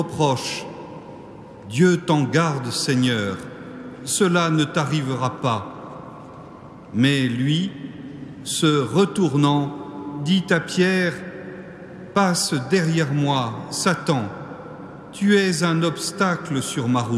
« Dieu t'en garde, Seigneur, cela ne t'arrivera pas. » Mais lui, se retournant, dit à Pierre, « Passe derrière moi, Satan, tu es un obstacle sur ma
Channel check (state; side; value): identical; both; correlation 1.00